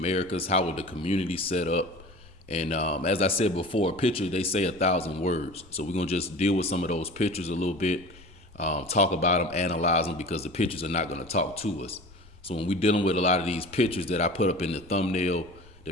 How were the communities set up? And as I said before, a picture, they say 1,000 words. So we're going to just deal with some of those pictures a little bit, talk about them, analyze them, because the pictures are not going to talk to us. So when we're dealing with a lot of these pictures that I put up in the thumbnail, the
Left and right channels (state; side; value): noise; left; rumble, 24 dB below the sound